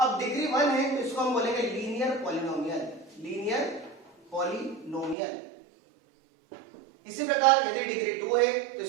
डिग्री 1 है तो इसको हम बोलेंगे लीनियर पॉलिनोमियल, लीनियर पॉलिनोमियल। इसी प्रकार यदि डिग्री 2 है तो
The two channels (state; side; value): drops out; left; at 5.2 s